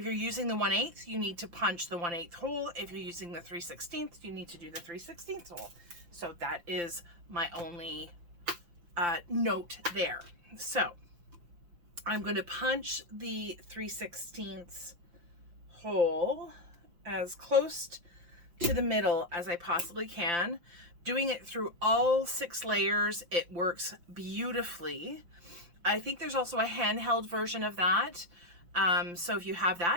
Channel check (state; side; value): late; left; 5.8 ms